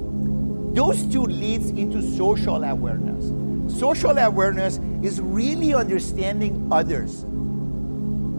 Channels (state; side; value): inverted; both; correlation -1.00